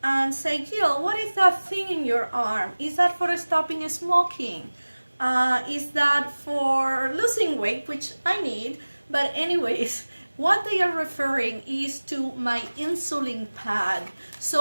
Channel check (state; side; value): inverted; both; correlation -1.00